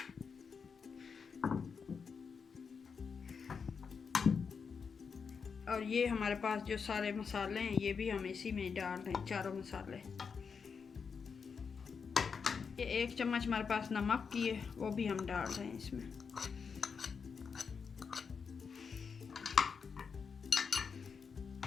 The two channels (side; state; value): right; quieter; 5.8 dB